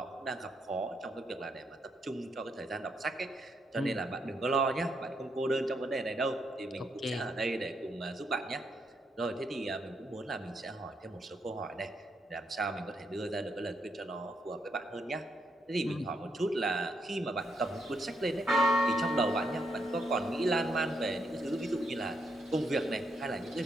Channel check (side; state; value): both; normal; correlation 0.78